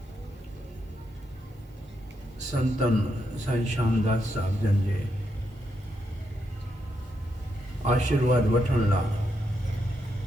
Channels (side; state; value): both; normal; correlation 0.81